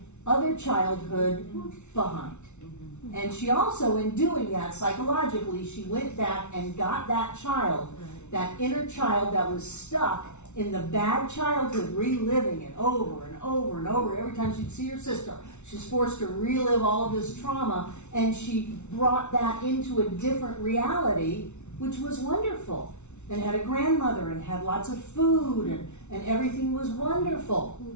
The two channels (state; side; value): late; right; 0.82 ms